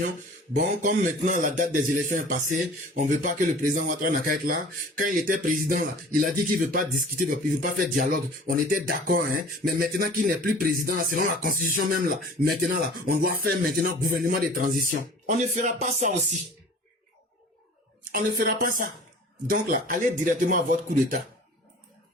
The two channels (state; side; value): normal; both; correlation 0.45